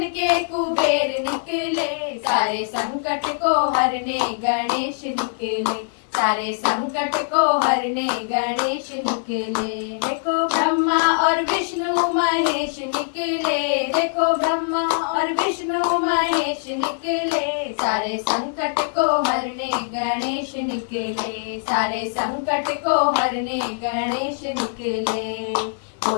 के कुबेर निकले, सारे संकट को हरने गणेश निकले, सारे संकट को हरने गणेश निकले। देखो ब्रह्मा और विष्णु महेश निकले, देखो ब्रह्मा और विष्णु महेश निकले, सारे संकट को हरने गणेश निकले, सारे संकट को हरने गणेश निकले।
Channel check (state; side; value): silent; right; 58 dB below the other